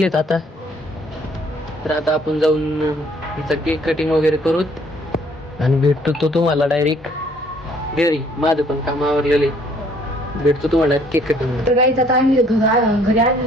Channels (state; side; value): normal; both; correlation 0.61